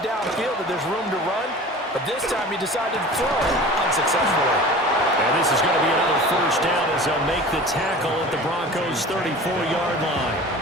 downfield that there's room to run, but this time he decided to throw unsuccessfully. And this is going to be another 1st down as they'll make the tackle at the Broncos' 34-yard line.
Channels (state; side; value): normal; both; correlation 0.39